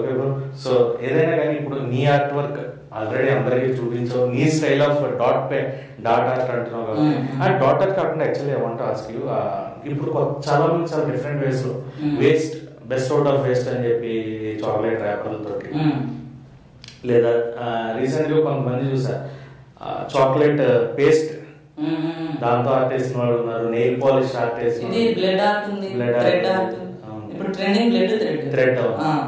bro. సో ఏదైనా కానీ ఇప్పుడు నీ ఆర్ట్ వర్క్ ఆల్రెడీ అందరికి చూపించావు, నీ స్టైల్ ఆఫ్ డాట్ ఆర్ట్ అంటున్నావు కాబట్టి ఆ డాట్ ఆర్ట్ కాకుండా actually I want to ask you, ఇప్పుడు చాలా మంది చాలా డిఫరెంట్ వేస్ లో waste best out of waste అని చెప్పి చాక్లెట్ ర్యాపర్లతోటి, లేదా రీసెంట్ గా కొంతమంది చూసా చాక్లెట్ పేస్ట్ దాంతో ఆర్ట్ వేసిన వాళ్ళు ఉన్నారు, నెయిల్ పాలిష్ ఆర్ట్ వేసిన బ్లడ్ ఆర్ట్ ఉంది, థ్రెడ్ ఆర్ట్ ఇప్పుడు ట్రెండింగ్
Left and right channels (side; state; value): both; identical; correlation 1.00